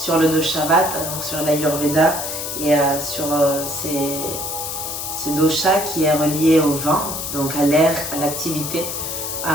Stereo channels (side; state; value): left; noise; hiss, 5 dB below the sound